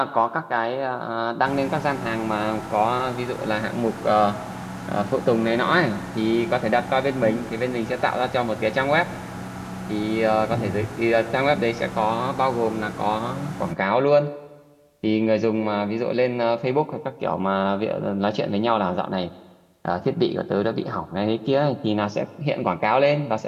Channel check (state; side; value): identical; both; correlation 1.00